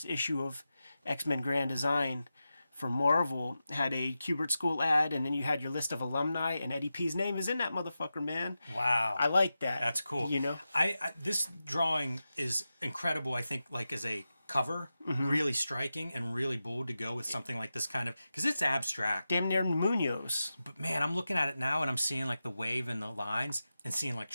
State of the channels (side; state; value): both; inverted; correlation -0.92